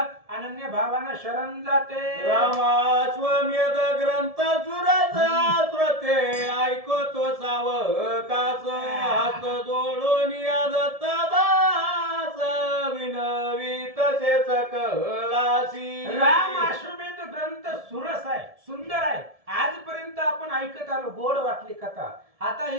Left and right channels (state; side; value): late; left; 1.7 ms